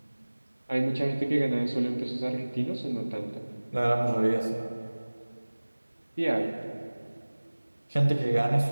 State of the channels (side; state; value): both; inverted; correlation -1.00